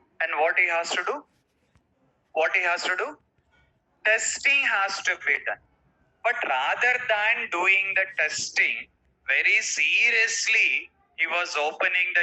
and what he has to do? What he has to do? Testing has to be done. But rather than doing the testing very seriously, he was opening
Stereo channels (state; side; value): identical; both; correlation 1.00